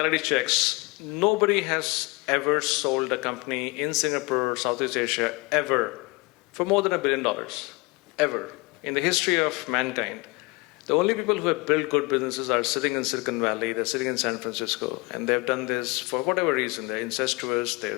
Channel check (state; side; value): quieter; right; 26.5 dB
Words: checks. Nobody has ever sold a company in Singapore or Southeast Asia ever for more than $1 billion. Ever. In the history of mankind. The only people who have built good businesses are sitting in Silicon Valley, they're sitting in San Francisco, and they've done this for whatever reason. They're incestuous,